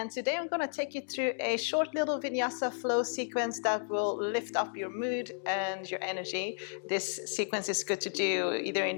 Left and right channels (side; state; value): right; silent; digital silence